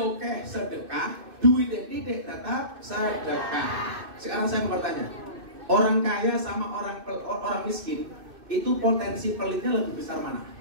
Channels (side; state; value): left; late; 2.6 ms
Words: oke sedekah, duitnya tidak tetap sedekah. Sekarang saya mau bertanya, orang kaya sama orang miskin itu potensi pelitnya lebih besar mana?